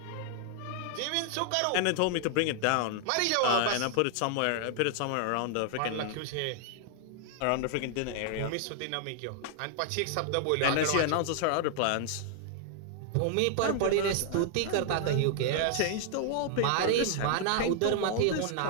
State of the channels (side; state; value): both; different; correlation 0.00